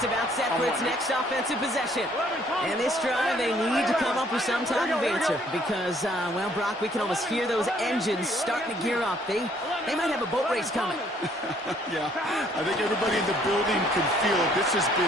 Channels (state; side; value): normal; both; correlation 0.63